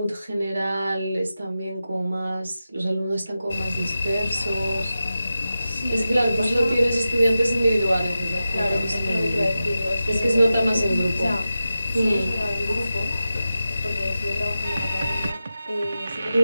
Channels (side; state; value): both; inverted; correlation -0.92